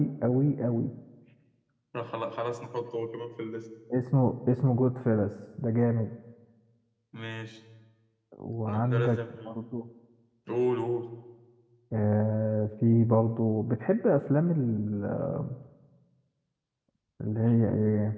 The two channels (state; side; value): identical; both; correlation 1.00